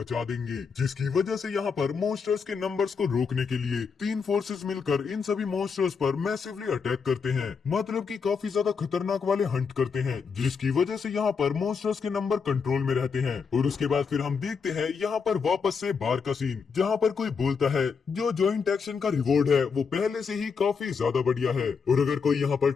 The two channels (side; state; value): right; quieter; 5.7 dB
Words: देंगे, जिसकी वजह से यहाँ पर मॉन्स्टर्स के नंबर्स को रोकने के लिए 3 फोर्सेस मिलकर इन सभी मॉन्स्टर्स पर मैसिवली अटैक करते हैं, मतलब कि काफी ज्यादा खतरनाक वाले हंट करते हैं, जिसकी वजह से यहाँ पर मॉन्स्टर्स के नंबर कंट्रोल में रहते हैं। और उसके बाद फिर हम देखते हैं यहाँ पर वापस से बार का सीन, जहाँ पर कोई बोलता है जो ज्वाइंट एक्शन का रिवॉर्ड है वो पहले से ही काफी ज्यादा बढ़िया है और अगर कोई यहाँ पर